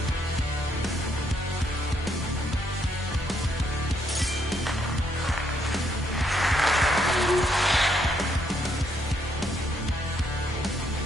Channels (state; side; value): normal; both; correlation 0.73